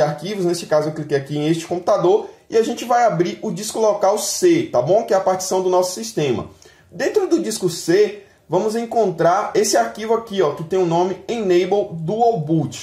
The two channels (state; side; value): identical; both; correlation 1.00